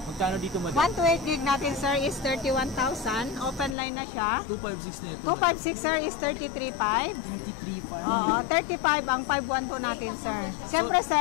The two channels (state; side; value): drops out; right; at 3.8 s